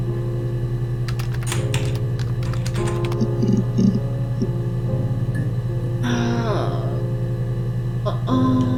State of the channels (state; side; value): identical; both; correlation 1.00